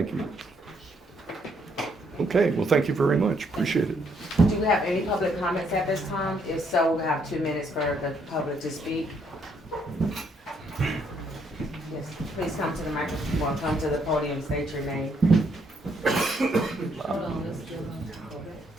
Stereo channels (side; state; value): both; normal; correlation 0.71